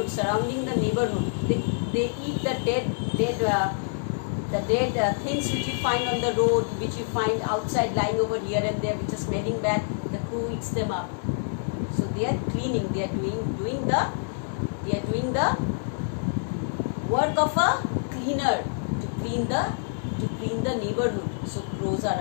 surrounding the neighborhood. They eat the dead things which you find on the road, which you find outside lying over here and there, which are smelling bad. The crow eats them up. So they are cleaning. They are doing the work of a cleaner to clean the neighborhood. So crows are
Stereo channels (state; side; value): silent; right; digital silence